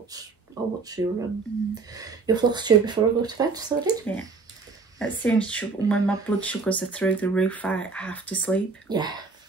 I'll watch your floss tube before I go to bed. So I did. Yeah. It seems when my blood sugars are through the roof, I have to sleep. Yeah.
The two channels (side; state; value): left; quieter; 4.3 dB